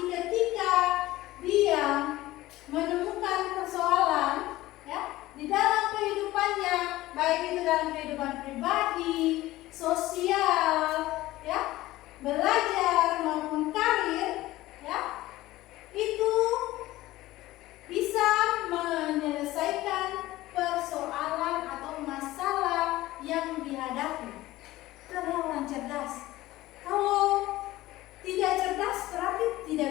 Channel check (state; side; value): quieter; right; 17.0 dB